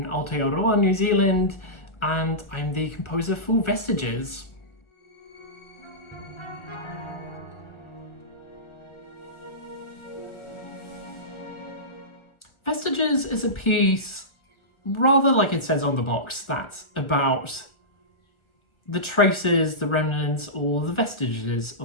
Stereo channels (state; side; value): late; right; 1.4 ms